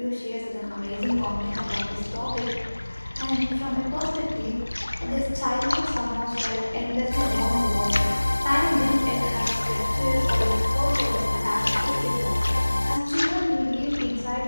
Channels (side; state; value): both; inverted; correlation -1.00